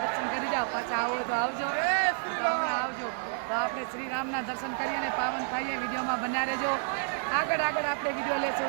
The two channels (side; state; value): left; silent; 58 dB below the other